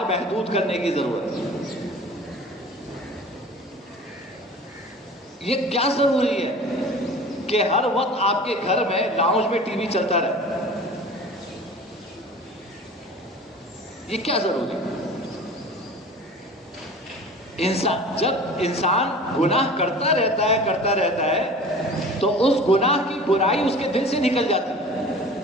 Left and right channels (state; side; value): normal; both; correlation 0.41